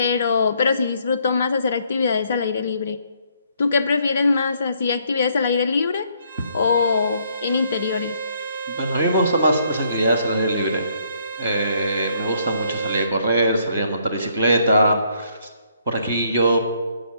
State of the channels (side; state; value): both; inverted; correlation -0.68